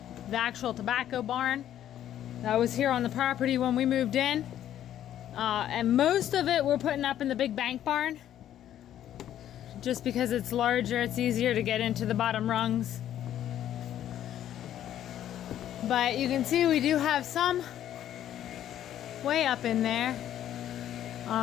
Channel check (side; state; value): right; quieter; 11.3 dB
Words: actual tobacco barn that was here on the property when we moved in. And most of it we're putting up in the big bank barn. Just because it's larger, it's easier to get into the bottom rungs. But you can see we do have some way up in there.